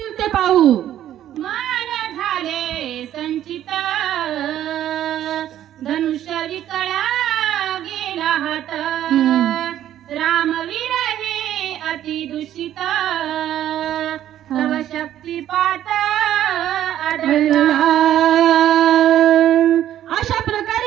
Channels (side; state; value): left; quieter; 11.8 dB